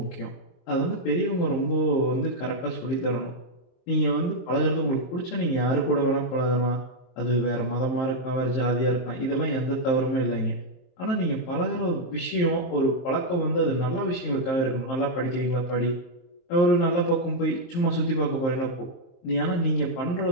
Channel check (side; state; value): right; late; 23 ms